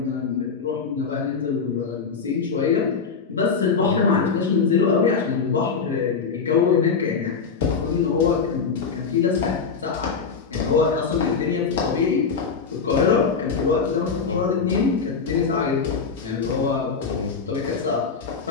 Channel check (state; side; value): quieter; right; 5.4 dB